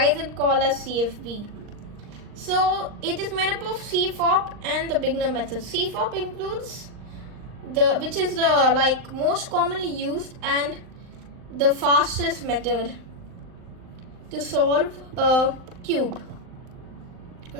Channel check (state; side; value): late; left; 39 ms